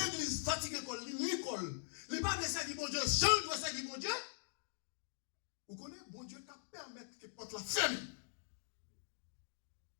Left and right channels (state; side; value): silent; right; digital silence